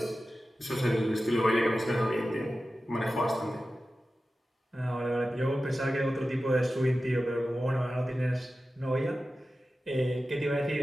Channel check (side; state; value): both; normal; correlation 0.94